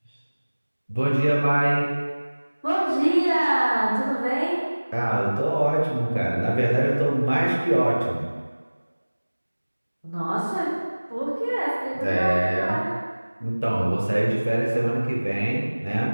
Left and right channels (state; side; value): inverted; both; correlation -1.00